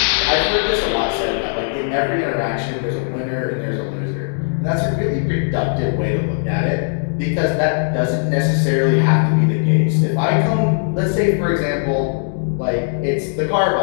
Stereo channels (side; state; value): right; silent; digital silence